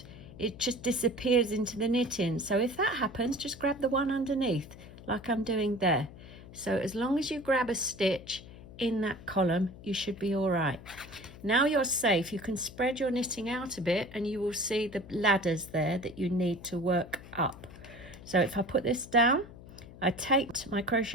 it just disappears into the knitting. So if that happens, just grab the one underneath like I'm doing there. So as long as you grab a stitch in that column, you should be all right. Now you're safe. You can spread your knitting out a bit and you will see the ladders there that you need to work up. So if I put this down, I take my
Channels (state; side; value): noise; left; hum, 17 dB below the sound